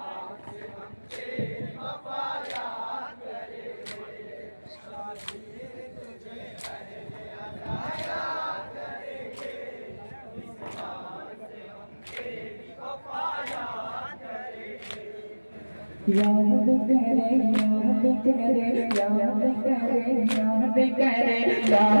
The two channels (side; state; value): both; inverted; correlation -1.00